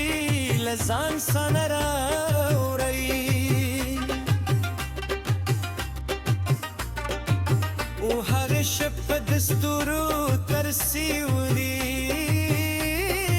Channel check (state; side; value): identical; both; correlation 1.00